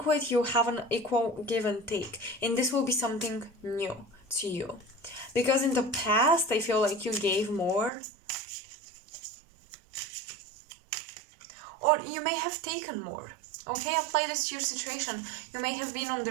You have an equal give and take, and this will be something new to you, because in the past I feel like you gave more, or you may have taken more. Okay, apply this to your situation. You may have been on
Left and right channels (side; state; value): left; drops out; at 7.9 s